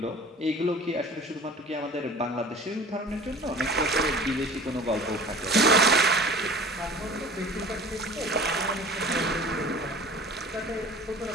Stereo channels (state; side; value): normal; both; correlation 0.43